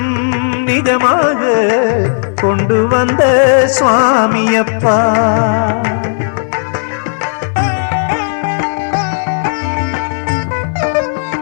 நிஜமாக கொண்டு வந்த சுவாமியப்பா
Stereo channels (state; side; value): silent; right; digital silence